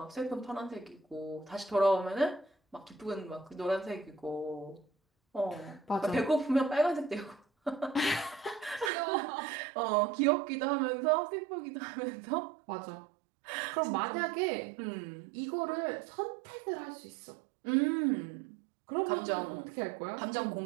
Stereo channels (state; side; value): drops out; left; at 8.9 s